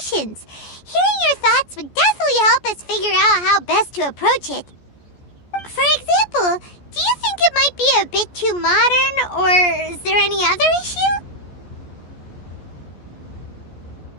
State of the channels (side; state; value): right; late; 14 ms